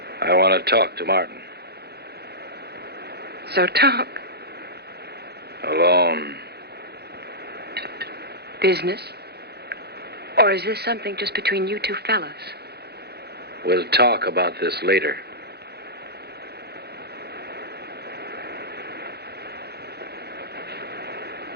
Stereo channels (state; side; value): late; left; 0.47 ms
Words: I want to talk to Martin. So talk. Alone. Business? Or is this something just between you two fellas? We'll talk about this later.